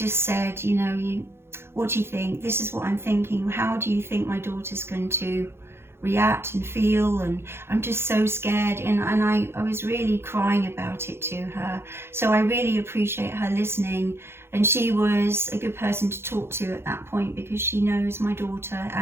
said, you know, what do you think? This is what I'm thinking. How do you think my daughter's going to react and feel? And I'm just so scared, and I was really crying about it to her. So I really appreciate her listening, and she was a good person to talk to at that point, because she knows my daughter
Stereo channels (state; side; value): late; left; 0.12 ms